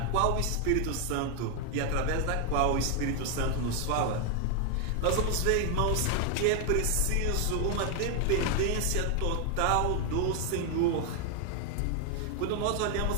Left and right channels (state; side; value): different; both; correlation 0.01